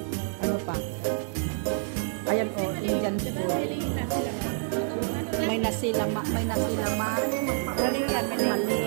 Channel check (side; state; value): left; silent; 59 dB below the other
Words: Ano pa? Ayan o, Indian food. May nasilama. May nasilama. Mali yan,